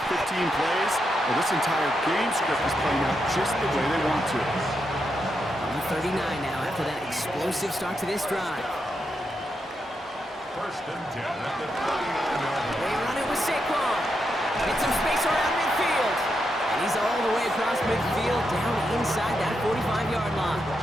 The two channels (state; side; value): normal; both; correlation 0.84